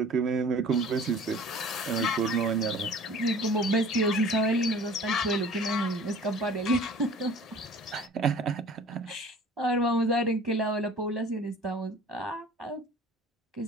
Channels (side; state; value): both; normal; correlation 0.46